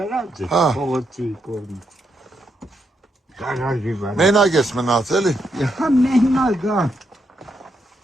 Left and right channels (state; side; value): normal; both; correlation 0.80